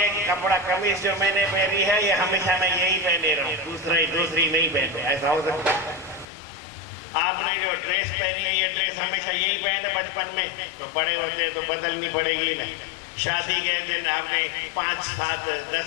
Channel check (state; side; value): drops out; right; at 6.2 s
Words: कपड़ा कमीज जो मैंने पहनी है ये हमेशा मैं यही पहने रहा हूँ, दूसरी नहीं पहनते, ऐसा हो सकता है? आपने जो ड्रेस पहनी है ये ड्रेस हमेशा यही पहने बचपन में, तो बड़े होते तो बदलनी पड़ेगी ना। शादी के दिन आपने 5, 7,